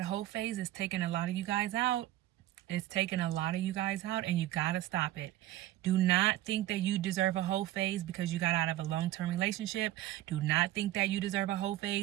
whole phase is taking a lot of you guys out. It's taking a lot of you guys out, and you gotta stop it. Do not think that you deserve a whole phase because you got out of a long-term relationship. Do not think that you deserve a whole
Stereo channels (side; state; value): left; quieter; 14.8 dB